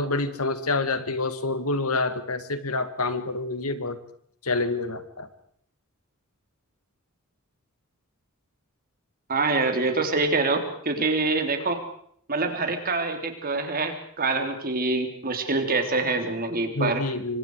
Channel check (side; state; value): both; normal; correlation -0.08